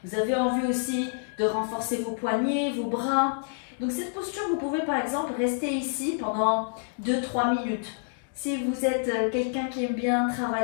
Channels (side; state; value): right; silent; digital silence